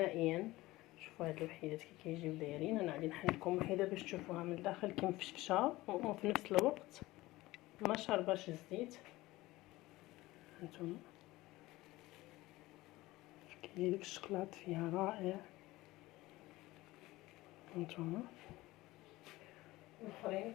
شوفوا هاد الوحيدات كي كيجيو دايرين. انا غادي نحل لكم وحيده باش تشوفوها من الداخل كي مفشفشه وفي نفس الوقت ما شارباش الزيت. هانتوما كيجي داك الشكلاط فيها رائع. هانتوما الاخرين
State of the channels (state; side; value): quieter; right; 18.7 dB